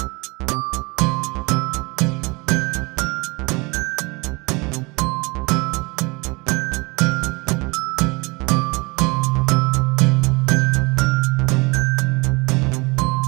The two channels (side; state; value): left; quieter; 26.4 dB